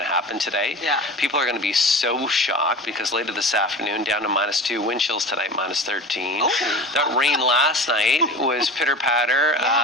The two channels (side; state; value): both; normal; correlation 0.34